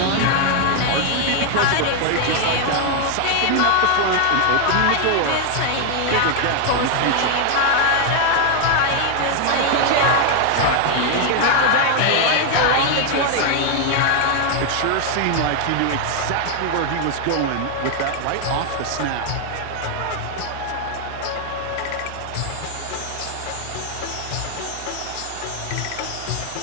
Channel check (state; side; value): different; both; correlation 0.00